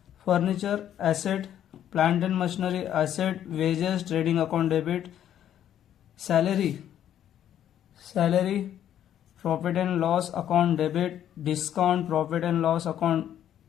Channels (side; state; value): right; quieter; 10.6 dB